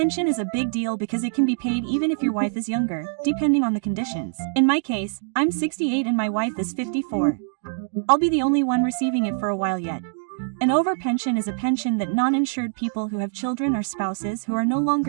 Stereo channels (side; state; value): left; silent; digital silence